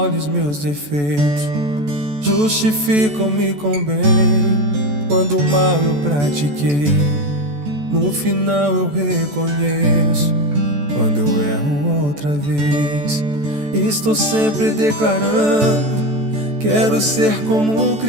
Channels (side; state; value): left; late; 14 ms